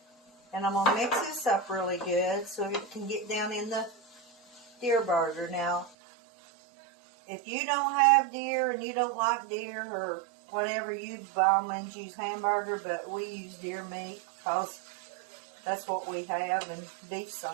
And I'm going to mix this up really good so it can get down in the deer burger. Now, if you don't have deer and you don't like deer or whatever, you by all means use hamburger, but we use deer meat because that's what we have, and beef's so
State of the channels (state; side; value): drops out; left; at 5.9 s